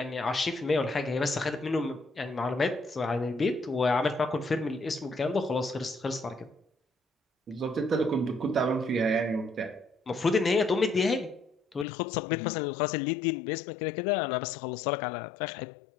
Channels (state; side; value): drops out; right; at 11.9 s